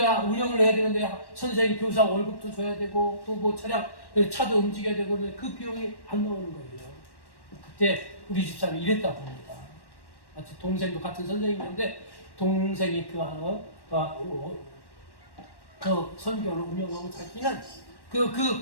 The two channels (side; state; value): right; late; 1.1 ms